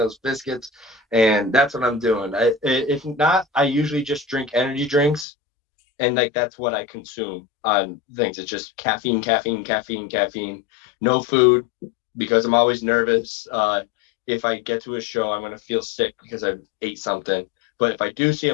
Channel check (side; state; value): right; drops out; at 5.2 s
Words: biscuits, and that's what I'm doing. If not, I usually just drink energy drinks, and like that's what I consume on things. It's just caffeine, caffeine, caffeine, caffeine. No food because I'm always nervous. If I get to a show, I'm gonna feel sick because I ate something. But if I do see